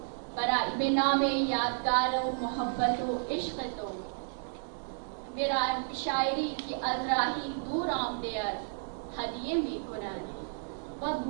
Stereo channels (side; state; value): left; silent; 56 dB below the other